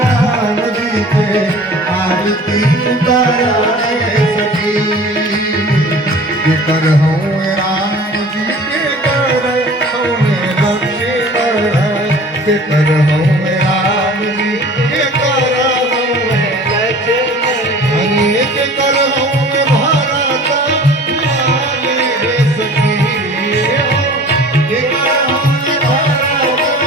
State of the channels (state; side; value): normal; both; correlation 0.45